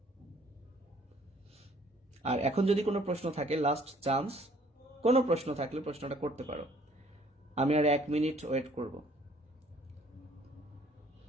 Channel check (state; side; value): normal; both; correlation 0.59